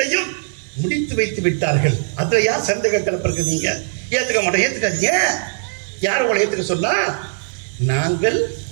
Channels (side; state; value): left; silent; 66 dB below the other